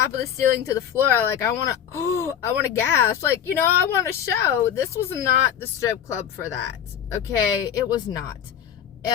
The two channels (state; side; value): quieter; right; 9.3 dB